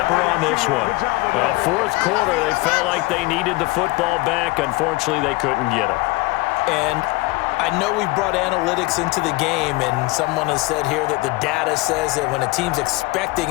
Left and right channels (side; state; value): right; quieter; 22.2 dB